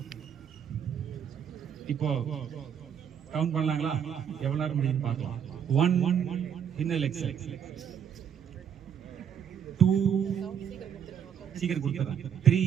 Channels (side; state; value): left; quieter; 8.3 dB